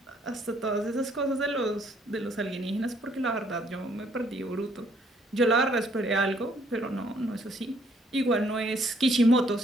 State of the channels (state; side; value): normal; both; correlation 0.66